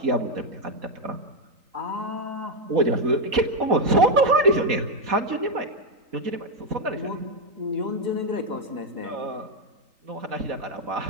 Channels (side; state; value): left; late; 3.8 ms